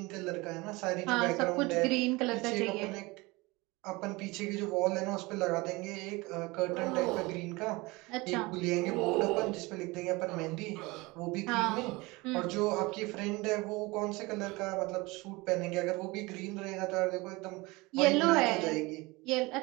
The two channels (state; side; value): quieter; left; 23.3 dB